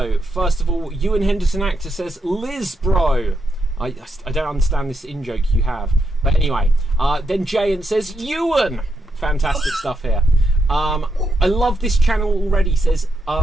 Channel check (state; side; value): normal; both; correlation 0.82